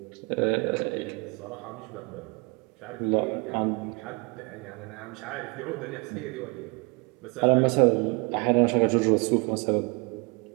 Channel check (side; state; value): left; quieter; 30.4 dB